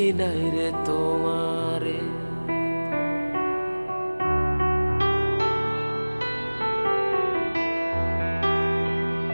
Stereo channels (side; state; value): both; inverted; correlation -1.00